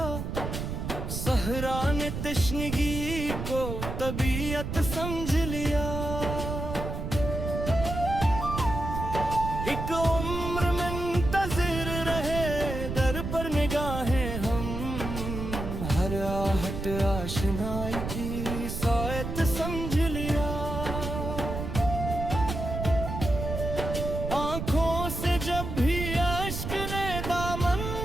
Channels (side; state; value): right; noise; rumble, 5 dB below the sound